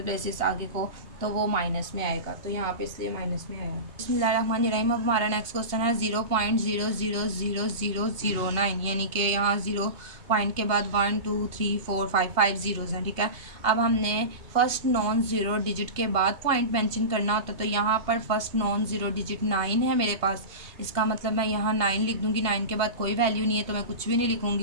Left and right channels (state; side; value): late; left; 2.8 ms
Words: प्लेसेस आगे को, तो वो माइनस में आएगा। तो यहाँ पे इसलिए माइनस में आएगा। बिस्मिल्लाहिर्रहमानिर्रहीम। अब हमारा नेक्स्ट क्वेश्चन है 0.000009, यानी कि यहाँ 0 पॉइंट के बाद 1 2 3 4 5 ज़ीरोज़ हैं। ठीक है, अब हमने फर्स्ट नॉन ज़ीरो डिजिट के बाद पॉइंट मेंशन करना होता है। तो यहाँ पर फर्स्ट नॉन ज़ीरो डिजिट 9 है मेरे पास, इसका मतलब मैं यहाँ 9 लिख दूँगी। 9 के बाद कोई वैल्यू नहीं है तो मैं कुछ भी नहीं